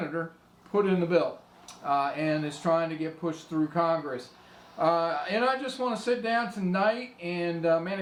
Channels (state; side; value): identical; both; correlation 1.00